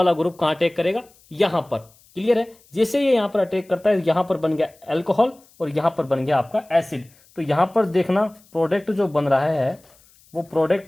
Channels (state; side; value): noise; left; hiss, 30 dB below the sound